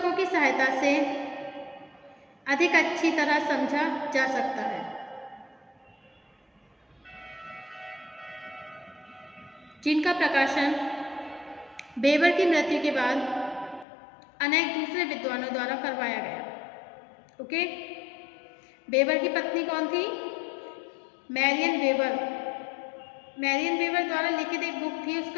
की सहायता से अधिक अच्छी तरह समझा जा सकता है, जिनका प्रकाशन बेवर की मृत्यु के बाद अनेक दूसरे विद्वानों द्वारा करवाया गया। ओके, बेवर की पत्नी कौन थी? Marrion weber. मैरियन वेबर द्वारा लिखित एक बुक थी,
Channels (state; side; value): drops out; right; at 13.9 s